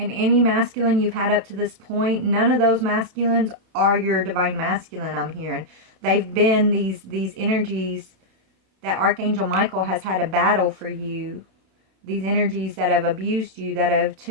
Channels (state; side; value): late; left; 32 ms